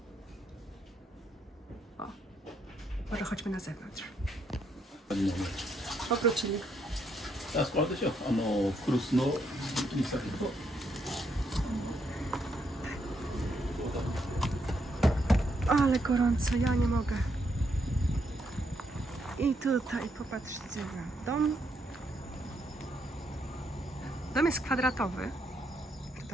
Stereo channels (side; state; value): both; normal; correlation 0.76